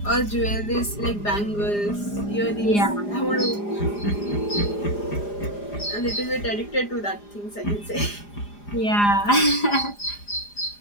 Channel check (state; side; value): late; right; 4.9 ms